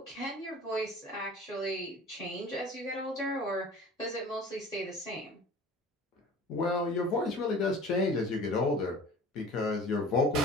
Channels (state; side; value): normal; both; correlation 0.43